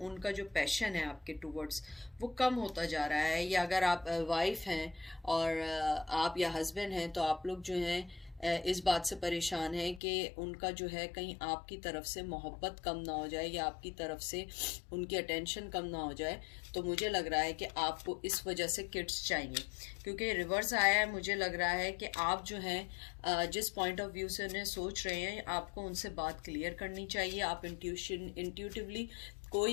उनका जो पैशन है आपके टूवर्ड्स वो कम होता जा रहा है। या अगर आप वाइफ हैं और आप या हस्बैंड हैं, तो आप लोग जो हैं इस बात से परेशान है कि उनका जो है कहीं आपकी तरफ से मोहब्बत कम ना हो जाए या आपकी तरफ से उनकी अटेंशन कम ना हो जाए। तो मुझे लग रहा है कि आपको इस वजह से किड्स चाहिए, क्योंकि रिवर्स आया है। मुझे लग रहा है कि आप जो हैं जिस पॉइंट ऑफ व्यू से उन्हें सोच रहे हैं, आपको उनसे बात क्लियर करनी चाहिए। आप इंट्यूटिवली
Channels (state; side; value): drops out; right; at 10.0 s